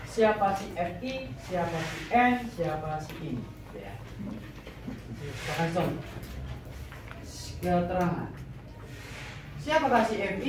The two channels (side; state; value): both; identical; correlation 1.00